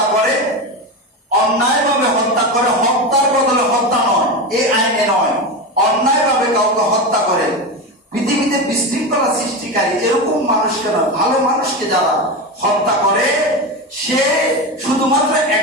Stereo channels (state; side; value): normal; both; correlation 0.19